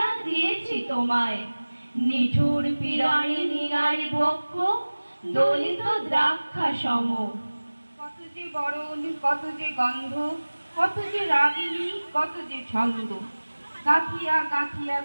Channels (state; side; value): inverted; both; correlation -1.00